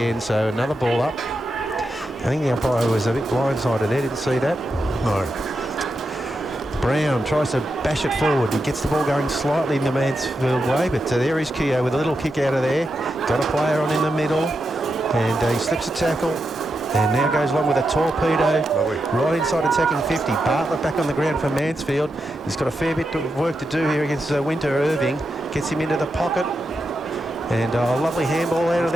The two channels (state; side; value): normal; both; correlation 0.87